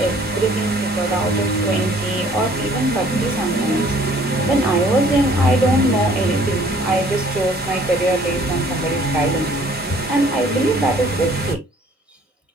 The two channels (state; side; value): normal; both; correlation 0.57